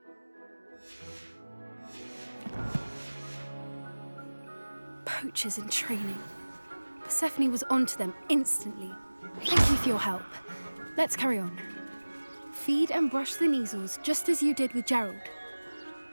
Poachers in training. Persephone was onto them instantly. Thank you for your help. Let's carry on. Feed and brush the measles just as you did with Gerald.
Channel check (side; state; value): both; inverted; correlation -1.00